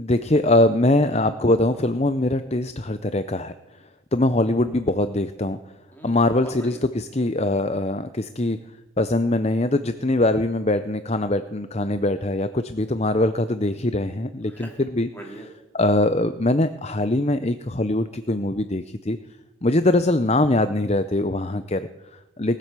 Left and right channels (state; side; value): normal; both; correlation 0.53